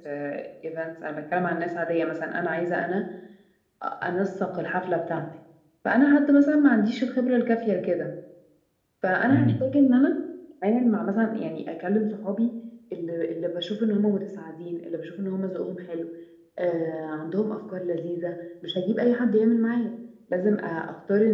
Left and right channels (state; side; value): identical; both; correlation 1.00